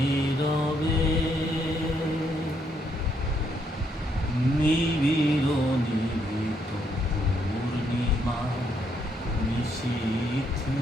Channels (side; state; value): both; normal; correlation 0.74